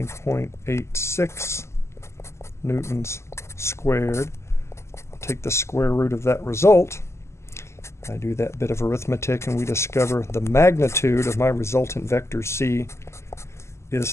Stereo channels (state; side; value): late; right; 0.13 ms